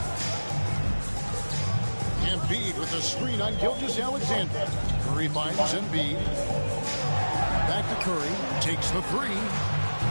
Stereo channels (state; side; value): inverted; both; correlation -1.00